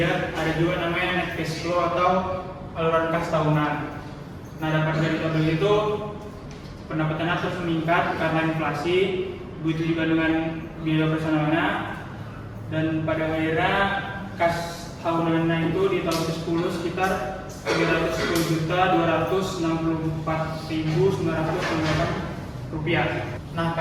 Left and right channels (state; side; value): identical; both; correlation 1.00